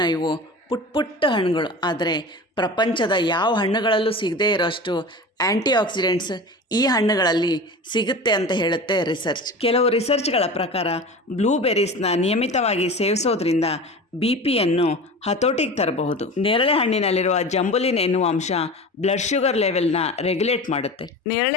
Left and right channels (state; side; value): normal; both; correlation 0.33